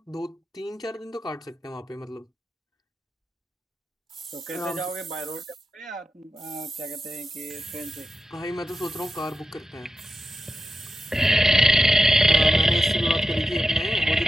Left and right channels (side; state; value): both; normal; correlation 0.90